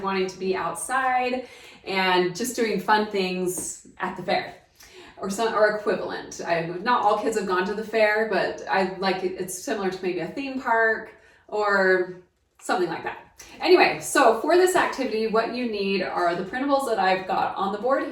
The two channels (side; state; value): both; identical; correlation 1.00